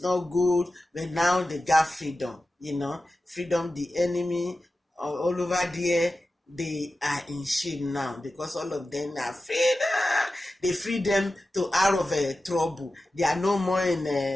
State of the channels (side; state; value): both; normal; correlation 0.93